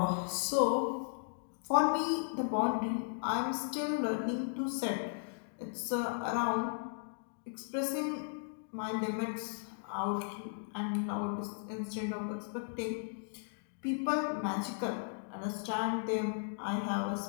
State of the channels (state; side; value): silent; right; digital silence